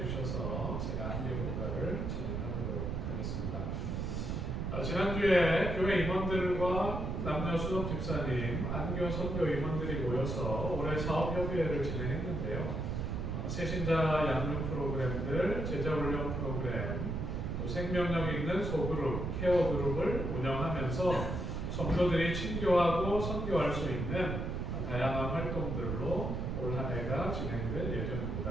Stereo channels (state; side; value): noise; right; rumble, 2 dB below the sound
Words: 제가 안교 교과를 진행하도록 하겠습니다. 지난주에 교회 임원들과 남녀 수석 집사님, 안교 선교 임원들이 모여서 올해 사업협의회를 진행했는데요. 새신자 양육 프로그램들, 제자훈련 프로그램, 또 생명력 있는 소그룹, 케어 그룹을 운영하면서 성도들이 친교하고 선교할 수 있는 다양한 활동들로 올 한 해가 진행될